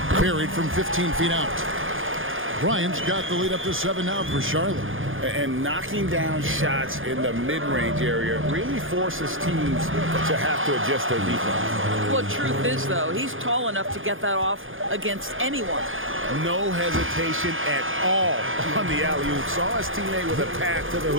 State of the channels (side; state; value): left; late; 0.58 ms